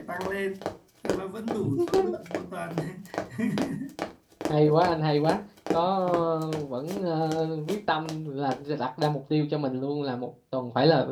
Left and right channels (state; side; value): identical; both; correlation 1.00